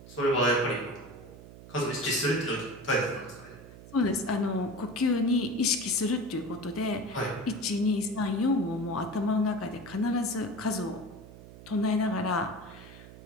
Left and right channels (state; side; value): noise; right; hum, 17 dB below the sound